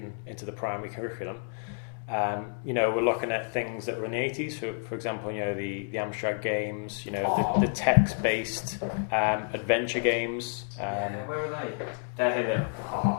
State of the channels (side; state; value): right; silent; 58 dB below the other